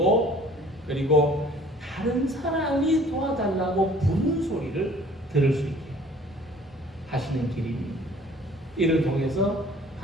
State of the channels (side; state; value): both; normal; correlation 0.53